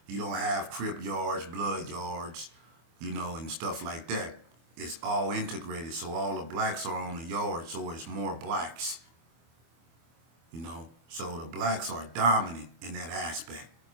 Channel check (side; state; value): left; late; 25 ms